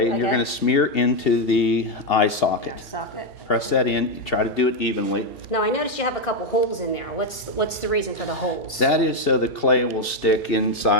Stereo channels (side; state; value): both; normal; correlation 0.04